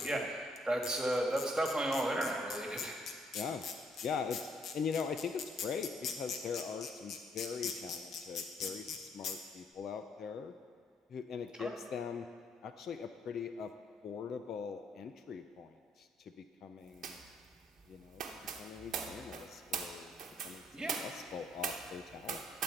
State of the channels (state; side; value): normal; both; correlation 0.70